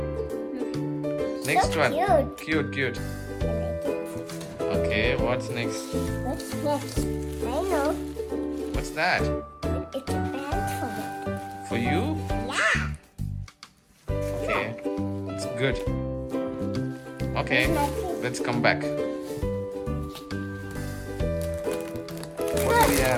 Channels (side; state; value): both; identical; correlation 1.00